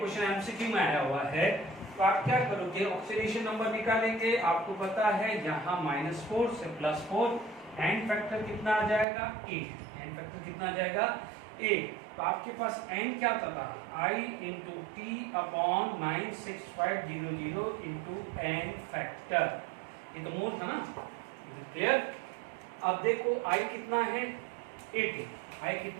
एमसीक्यू में आया हुआ है, तो आप क्या करोगे, ऑक्सीडेशन नंबर निकालेंगे। आपको पता है यहाँ -4 से +4, एन फैक्टर कितना आ जाएगा 8, एन फैक्टर कितना आ जाएगा 8। तो आपके पास एन क्या था, I into T upon 96500 into N factor, ये तो मोल था ना, क्लियर। अब देखो आई कितना है 80, आई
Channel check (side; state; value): left; drops out; at 9.1 s